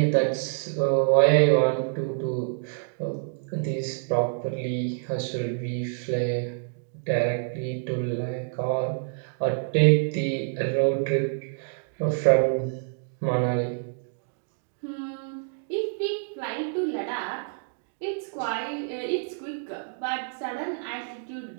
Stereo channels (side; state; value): left; silent; digital silence